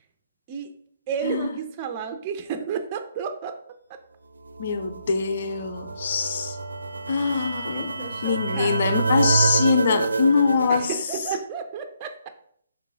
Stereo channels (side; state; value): both; inverted; correlation -0.75